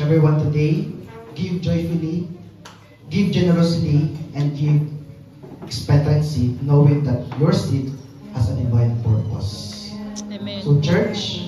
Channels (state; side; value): identical; both; correlation 1.00